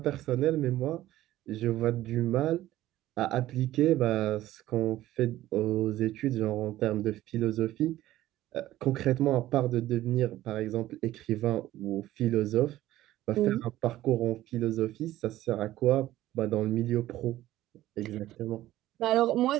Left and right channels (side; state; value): left; quieter; 14.9 dB